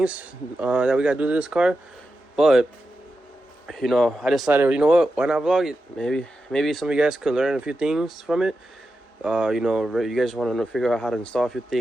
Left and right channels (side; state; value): both; normal; correlation 0.90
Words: that we gotta do to this car. But I decided, why not vlog it? Maybe some of you guys could learn a few things from it. You guys want to figure out how to install a few